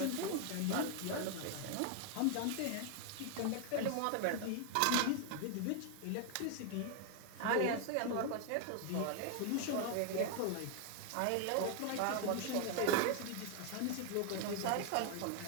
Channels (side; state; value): both; different; correlation 0.00